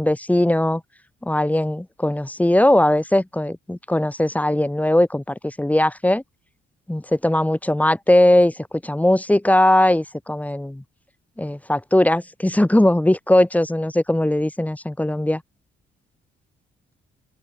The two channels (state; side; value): normal; both; correlation 0.96